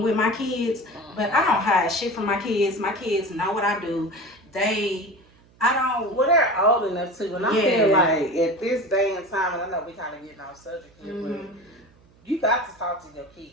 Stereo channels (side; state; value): right; noise; hum, 29 dB below the sound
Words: with my kids, but I don't hide shit from my kids. My kids know what I do. Well, they're old enough too, and I feel like at this day and time, and I know we kind of getting off subject here, but you got to talk to your kids.